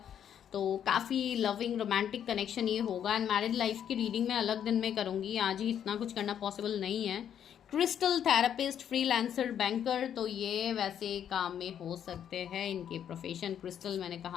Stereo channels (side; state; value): right; quieter; 9.3 dB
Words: तो काफ़ी लविंग रोमांटिक कनेक्शन ये होगा। एंड मैरिड लाइफ की रीडिंग मैं अलग दिन में करूँगी, आज ही इतना कुछ करना पॉसिबल नहीं है। क्रिस्टल थेरेपिस्ट, फ्रीलांसर, बैंकर, तो ये वैसे काम में हो सकते हैं इनके प्रोफेशन। क्रिस्टल मैंने